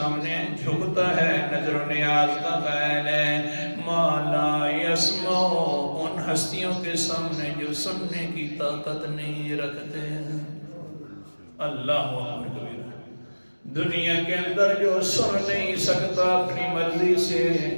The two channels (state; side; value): inverted; both; correlation -1.00